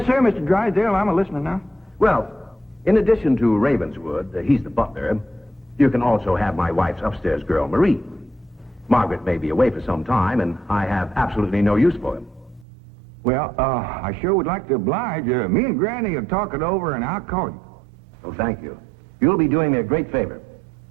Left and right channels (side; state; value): left; drops out; at 12.7 s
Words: sir, Mr. Drysdale. I'm a listening now. Well, in addition to Ravenswood, he's the butler, you can also have my wife's upstairs girl, Marie. Margaret may be away for some time, and I have absolutely no use for him. Well, I sure would like to oblige. Me and Granny will talk it over, and I'll call you. Oh, thank you. You'll be doing me a great favor.